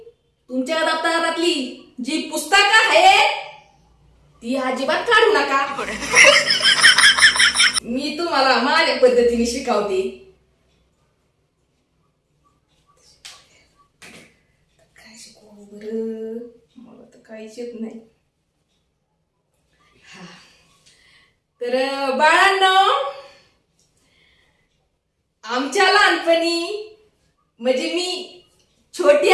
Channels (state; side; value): identical; both; correlation 1.00